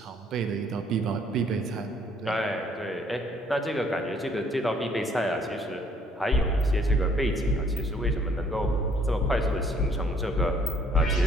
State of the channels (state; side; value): normal; both; correlation 0.63